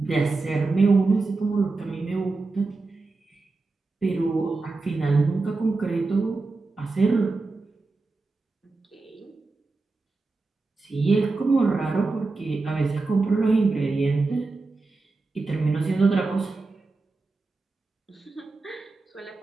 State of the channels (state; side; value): quieter; left; 3.6 dB